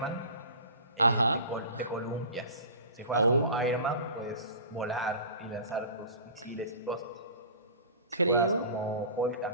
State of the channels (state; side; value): inverted; both; correlation -0.38